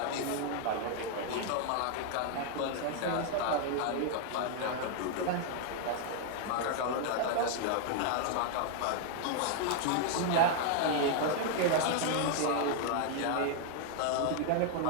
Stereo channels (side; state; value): both; different; correlation 0.00